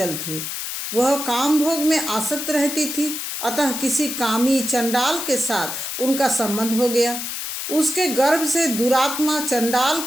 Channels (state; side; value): noise; left; hiss, 5 dB below the sound